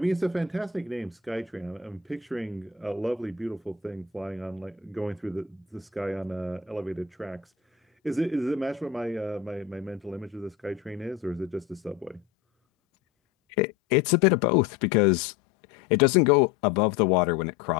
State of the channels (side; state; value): right; quieter; 8.0 dB